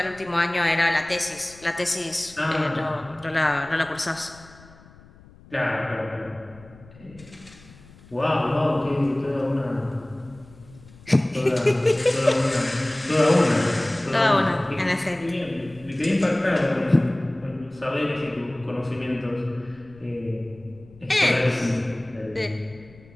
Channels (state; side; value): noise; left; rumble, 23 dB below the sound